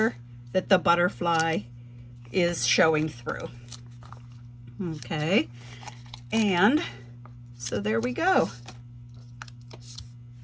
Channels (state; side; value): identical; both; correlation 1.00